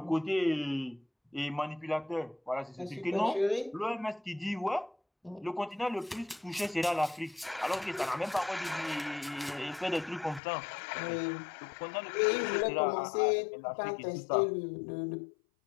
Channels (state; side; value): drops out; right; at 10.4 s